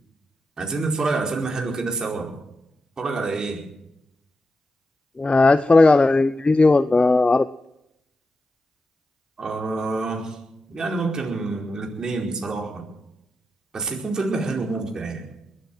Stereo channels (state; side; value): normal; both; correlation 0.89